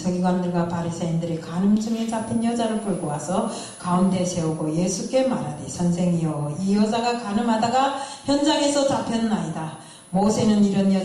바리새인들이 간음 중에 잡힌 여자를 끌고 와서 가운데 세우고 예수께 말하되 선생이여 이 여자가 간음하다가 현장에서 잡혔나이다. 모세는 이런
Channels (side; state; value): both; identical; correlation 1.00